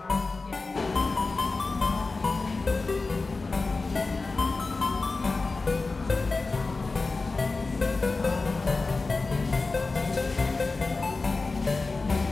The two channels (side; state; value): right; quieter; 3.7 dB